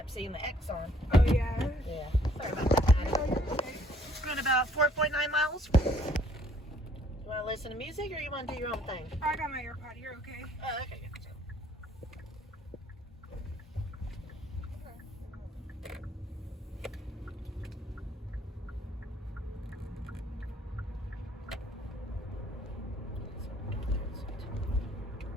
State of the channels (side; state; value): both; normal; correlation 0.62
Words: seeing the X on. Oh, yeah. Yeah. Sorry about that. Oh, you're okay. It's been about 4.9 miles. You want to listen to music or you want to do your own thing? I got my AirPod. You're okay. Oh, okay.